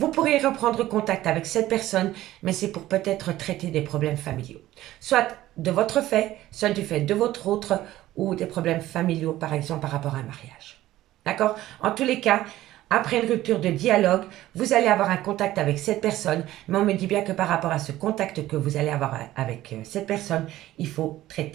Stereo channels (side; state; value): left; quieter; 15.0 dB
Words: pourrez reprendre contact avec cette personne, mais c'est pour peut-être traiter des problèmes familiaux. Soit de votre fait, soit du fait de votre autre, ou des problèmes familiaux, par exemple, par rapport à un mariage. D'accord? En tous les cas, après une rupture de dialogue, vous allez avoir un contact avec cette personne, mais on me dit bien que par rapport à ce contact que vous allez avoir avec cette personne, il faut